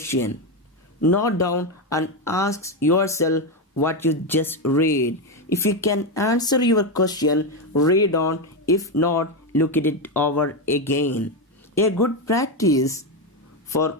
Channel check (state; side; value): normal; both; correlation 0.09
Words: Note down and ask yourself what you just read. If you can answer your question, read on. If not, look at it over again. A good practice for